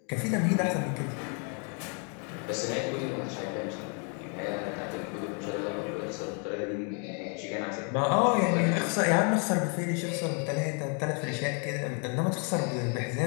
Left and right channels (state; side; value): quieter; right; 38.9 dB